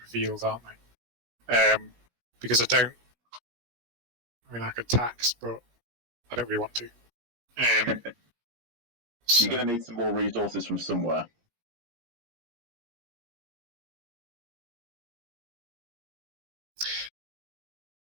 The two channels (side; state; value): left; late; 17 ms